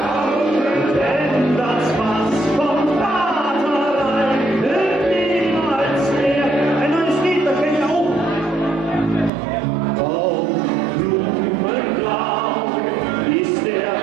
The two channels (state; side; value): drops out; left; at 9.3 s